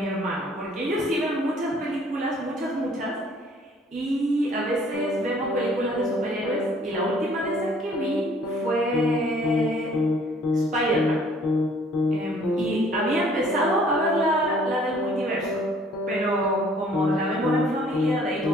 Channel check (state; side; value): normal; both; correlation 0.58